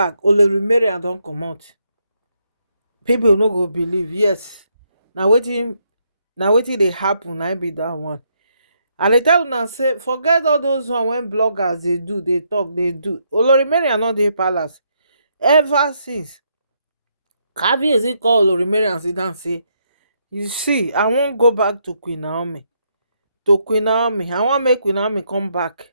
Olori Mariam don comot. People no go believe. Yes, na wetin dey happen, na im be that one. And dey tell una say forget all those one wey bloggers dey do, dey talk, dey do. Olori Mariam no dey palace ever since. Kabiyesi call Olori Mariam sit down say, you see, I wan go back to Queen Naomi. I wan make Queen Naomi come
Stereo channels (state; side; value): inverted; both; correlation -0.76